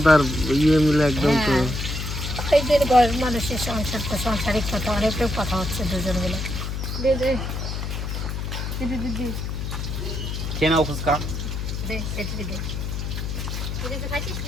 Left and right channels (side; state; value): left; noise; hum, 4 dB below the sound